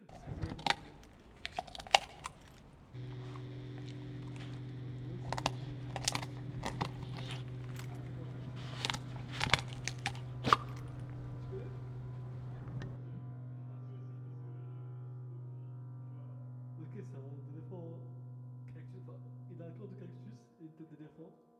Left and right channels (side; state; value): both; identical; correlation 1.00